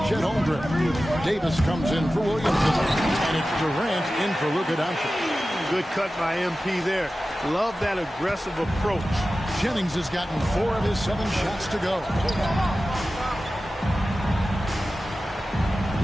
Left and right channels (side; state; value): both; normal; correlation 0.95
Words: Chet Holmgren. Davis comes in for Williamson. And it's Durant in for Luka Doncic. Good cut by MP there. Love that aggressive approach. Jennings has gotten 4 of his 7 shots to go.